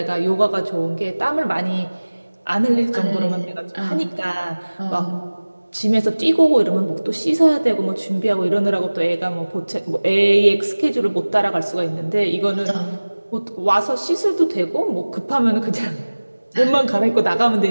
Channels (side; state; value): both; inverted; correlation -1.00